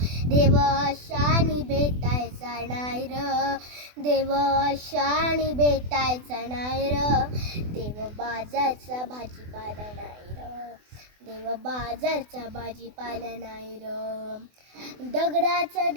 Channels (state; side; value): late; left; 24 ms